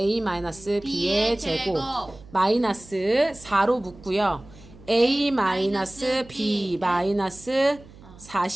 제곱 마이너스 4로 묶고요. a-b 마이너스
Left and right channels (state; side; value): noise; right; hum, 21 dB below the sound